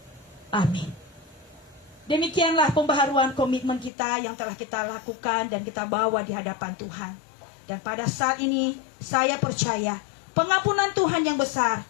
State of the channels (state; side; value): drops out; right; at 3.9 s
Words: Amin. Demikianlah pembaharuan komitmen kita yang telah kita lakukan dan kita bawa di hadapan Tuhan. Dan pada saat ini saya percaya pengampunan Tuhan yang besar